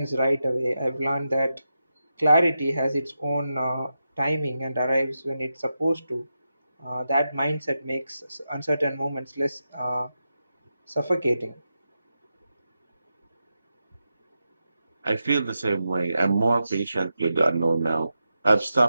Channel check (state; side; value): inverted; both; correlation -0.88